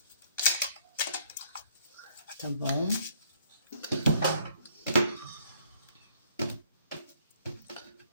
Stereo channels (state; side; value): inverted; both; correlation -0.63